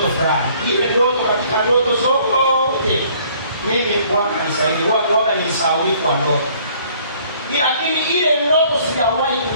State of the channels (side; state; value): both; inverted; correlation -0.59